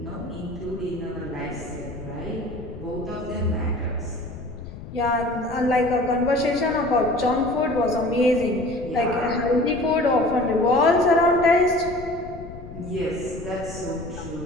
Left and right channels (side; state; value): left; noise; rumble, 13 dB below the sound